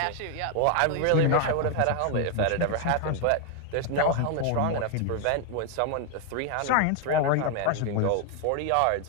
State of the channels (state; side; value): different; both; correlation 0.00